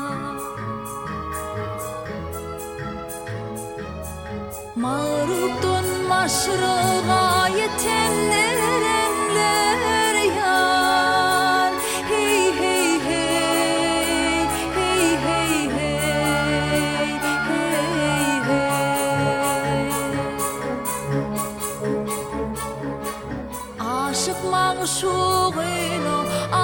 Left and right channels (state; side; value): identical; both; correlation 1.00